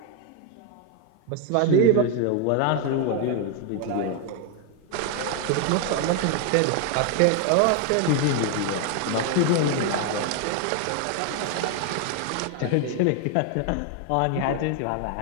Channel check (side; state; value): both; different; correlation 0.01